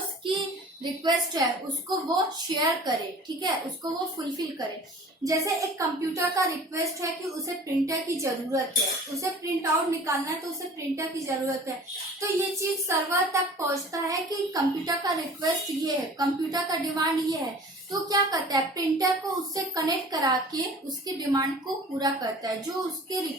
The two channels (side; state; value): both; normal; correlation 0.45